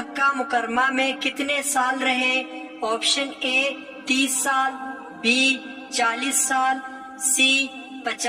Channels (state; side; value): identical; both; correlation 1.00